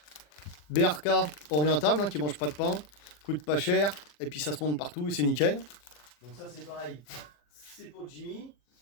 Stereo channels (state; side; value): late; right; 40 ms